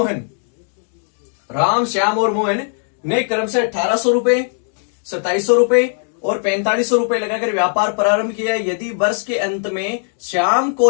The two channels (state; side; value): silent; right; 67 dB below the other